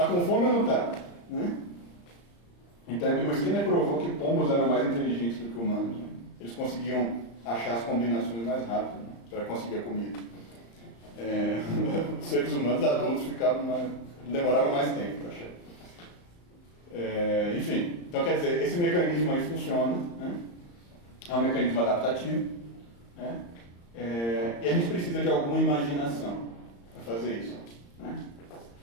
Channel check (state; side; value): late; right; 35 ms